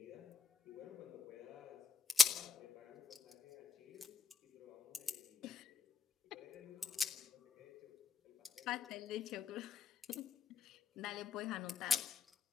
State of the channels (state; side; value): quieter; right; 5.1 dB